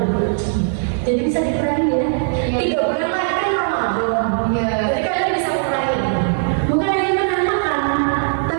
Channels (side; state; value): left; silent; digital silence